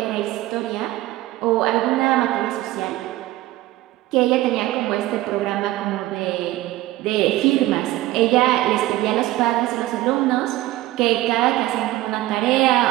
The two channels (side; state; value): left; quieter; 16.5 dB